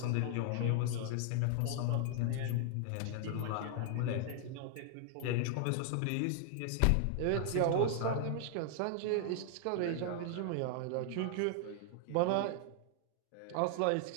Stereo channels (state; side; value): different; both; correlation 0.00